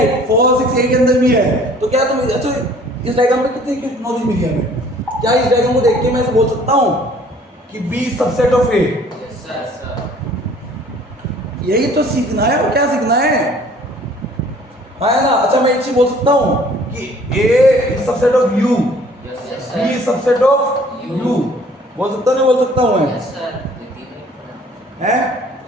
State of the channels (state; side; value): normal; both; correlation 0.54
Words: 4 6, ए के अंदर भी है। तो क्या तुम अच्छा इस डायग्राम में कितनी नॉलेज मिली है हमें? क्या इस डायग्राम को देख के मैं ऐसे बोल सकता हूँ कि बी सबसेट ऑफ ए? यही तो सीखना है, और क्या सीखना है? हाँ है ना। अच्छा मैं एक चीज बोल सकता हूँ कि A is subset of U, B is subset of U, बोल सकता नहीं बोल सकता हूँ मैं? है